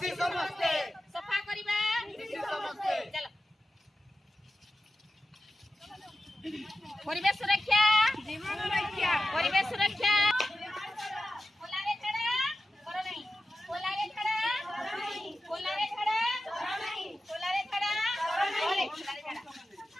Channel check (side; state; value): both; normal; correlation 0.93